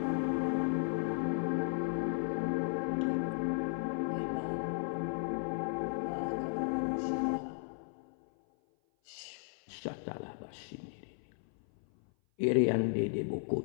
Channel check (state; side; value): silent; right; 54 dB below the other